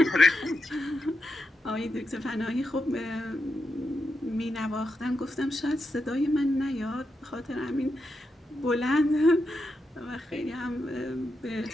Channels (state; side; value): normal; both; correlation 0.86